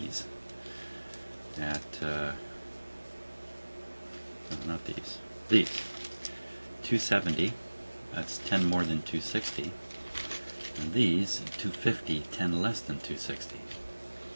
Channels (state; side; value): inverted; both; correlation -1.00